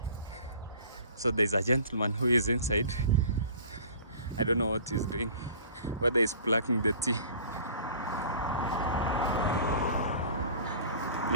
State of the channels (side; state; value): both; inverted; correlation -0.45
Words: So there's a gentleman who is inside. I don't know what he's doing, whether he's plucking the tea.